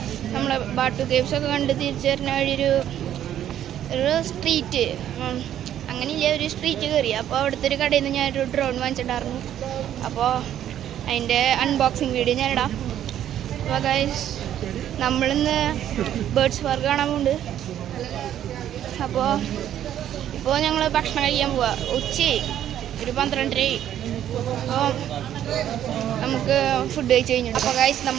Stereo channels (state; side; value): quieter; left; 11.0 dB